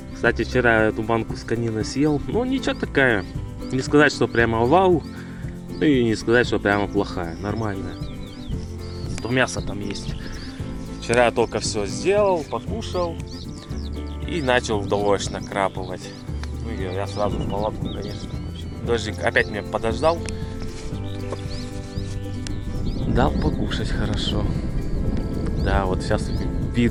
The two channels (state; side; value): identical; both; correlation 1.00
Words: Кстати, вчера эту банку с конины съел. Ну, ничего такая. Не сказать, что прямо вау. Ну и не сказать, что прямо плохая. Нормальная. Зато мясо там есть. Вчера я только все сделал, покушал. И начал дождь накрапывать. Ну и я сразу в палатку, конечно. Дождик опять меня подождал. Дал покушать хорошо. Да, вот сейчас вид